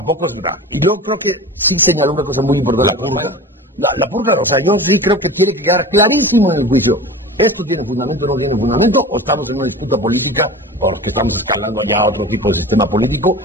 es grave. Y yo creo que sí señaló una cosa muy importante, la purga, o sea, yo sí creo que tiene que quedar clarísimo en el juicio. ¿Esto tiene fundamento o no tiene fundamento? ¿O estamos en una disputa política porque estamos escalando ya a otro tipo de sistema político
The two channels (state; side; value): normal; both; correlation 0.35